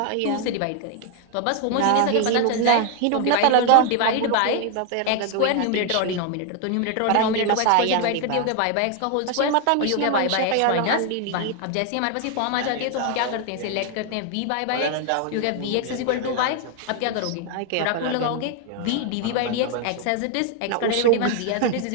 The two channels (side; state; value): both; different; correlation 0.00